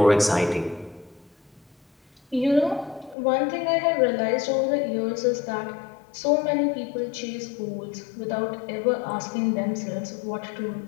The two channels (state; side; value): drops out; right; at 3.2 s